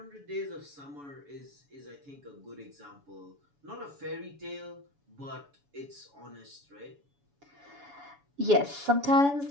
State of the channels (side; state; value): left; late; 7.0 ms